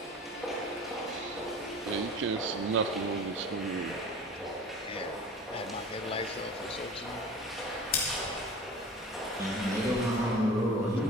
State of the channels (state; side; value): normal; both; correlation 0.40